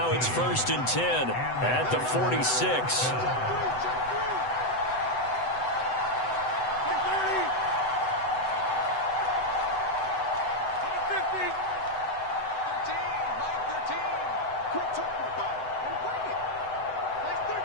it's 1st and 10 at the 46.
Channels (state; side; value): late; right; 7.9 ms